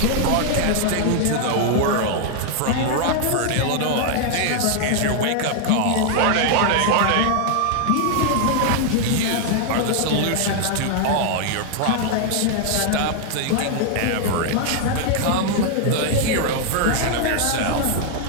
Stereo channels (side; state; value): both; different; correlation 0.00